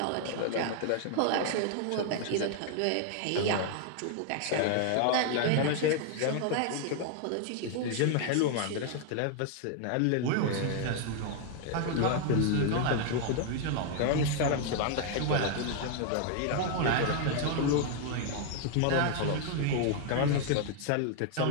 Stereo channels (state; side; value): different; both; correlation 0.00